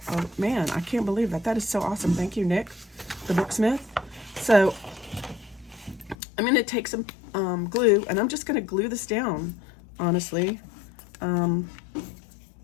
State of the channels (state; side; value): drops out; right; at 6.2 s